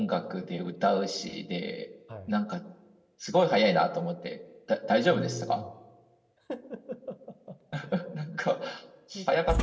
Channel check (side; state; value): both; identical; correlation 1.00